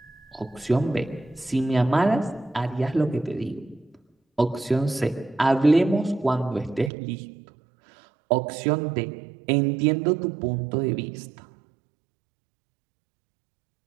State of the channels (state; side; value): drops out; left; at 6.9 s